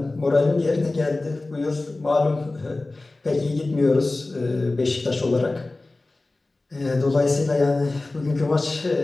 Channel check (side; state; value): right; quieter; 3.1 dB